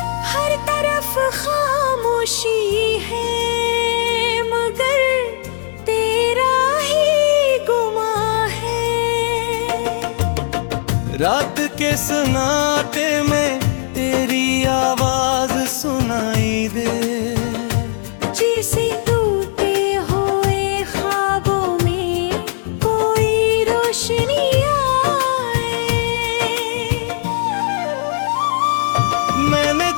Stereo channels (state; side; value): silent; right; 68 dB below the other